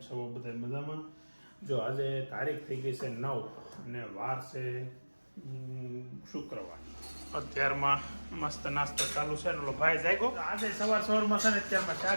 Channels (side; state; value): both; inverted; correlation -1.00